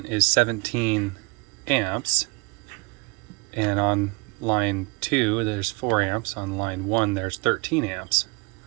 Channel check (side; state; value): left; quieter; 29.6 dB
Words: is 17 amps. And on line 2, there's 4 amps. On line 1, there's 13 amps.